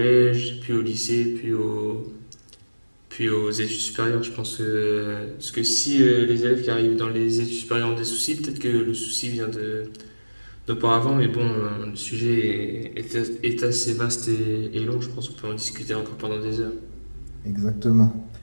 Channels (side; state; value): both; inverted; correlation -1.00